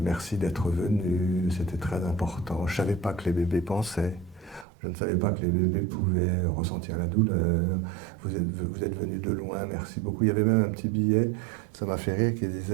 Merci d'être venu, c'était très important. Je ne savais pas que les bébés pensaient. Je ne savais pas que les bébés pouvaient ressentir la douleur. Vous êtes venu de loin, merci beaucoup. Il y avait même un petit billet, ça m'a fait rire, qui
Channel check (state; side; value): drops out; left; at 4.7 s